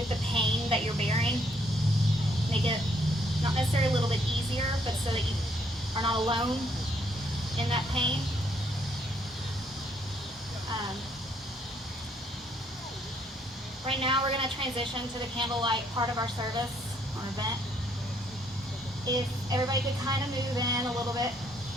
the pain that you're bearing, make it not necessarily a little bit easier, but so that you are not alone in that pain. Right now we're going to transition to the candlelight part of our service or event. If everybody could kind of move in a little bit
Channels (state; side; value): normal; both; correlation 0.69